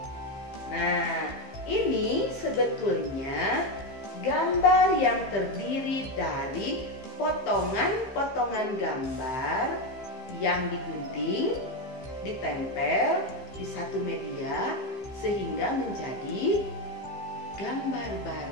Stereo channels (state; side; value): late; right; 15 ms